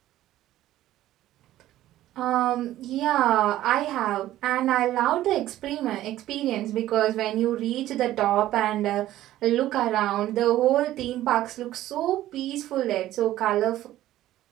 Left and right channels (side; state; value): left; quieter; 14.1 dB